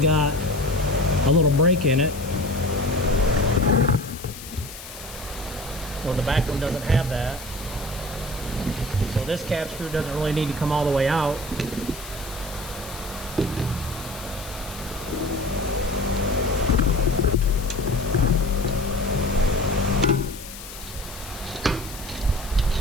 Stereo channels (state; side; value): noise; left; hiss, 14 dB below the sound